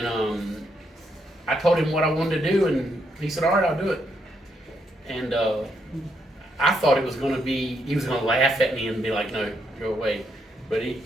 I told him what I wanted to do, and he said, all right, I'll do it. And I thought it was gonna be, he was gonna laugh at me and be like, no, go away. But he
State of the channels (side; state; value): both; normal; correlation 0.77